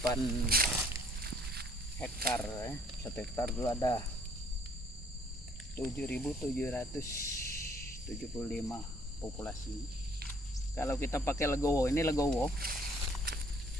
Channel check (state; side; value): normal; both; correlation 0.61